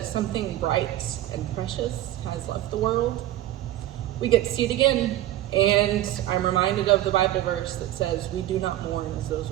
something bright and precious has left the world, we get to see it again. And I'm reminded of the Bible verse that says, we do not mourn as those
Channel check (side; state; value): left; quieter; 14.2 dB